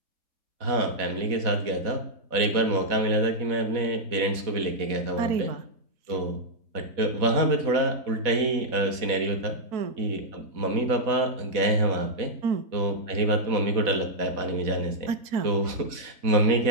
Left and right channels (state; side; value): late; left; 4.1 ms